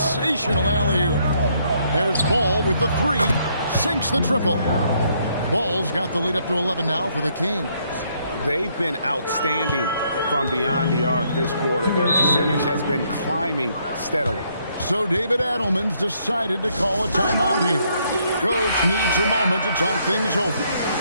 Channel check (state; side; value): inverted; both; correlation -0.71